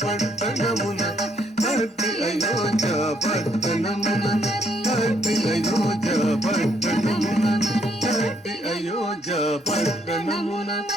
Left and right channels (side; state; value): both; normal; correlation 0.70